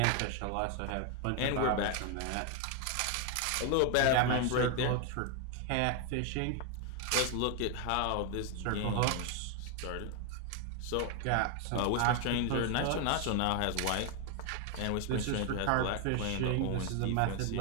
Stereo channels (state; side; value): different; both; correlation 0.01